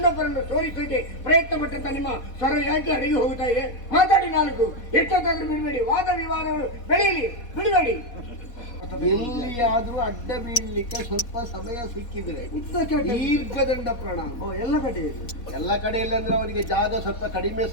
ಸೋಲಿಸಲಿಕ್ಕೆ ಪ್ರಯತ್ನ ಪಟ್ಟಂತ ನಿಮ್ಮ ಸ್ವರ ಯಾಕೆ ಅಡಗಿ ಹೋಗ್ತಾ ಇದೆ? ಮಾತಾಡಿ ನಾಲ್ಕು, ಎಷ್ಟೊತ್ತಾದ್ರೂ ಬಿಡಬೇಡಿ, ವಾದ ವಿವಾದಗಳು ಬೆಳೆಯಲಿ, ಬಿಡಬೇಡಿ. ಎಲ್ಲಿಯಾದ್ರೂ ಅಡ್ಡ ಬೀಳಲಿಕ್ಕೆ ಸ್ವಲ್ಪ ಸಮಯ ಸಿಕ್ಕಿದ್ರೆ ದೀರ್ಘದಂಡ ಪ್ರಣಾಮ ಎಲ್ಲ ಕಡೆಯಲ್ಲಿ ಅಂದ್ರೆ ಅವನಿಗೆ ಜಾಗ ಸ್ವಲ್ಪ ಕಡಿಮೆ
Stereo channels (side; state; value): right; late; 4.2 ms